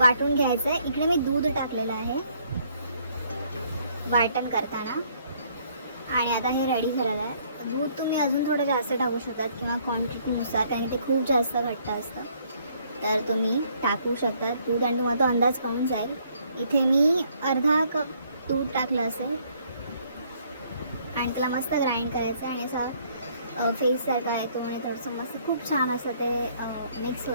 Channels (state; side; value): inverted; both; correlation -0.65